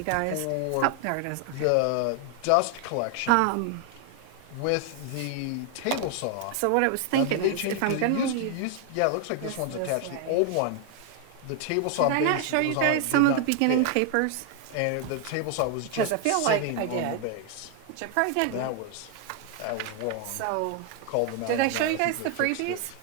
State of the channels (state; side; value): different; both; correlation 0.00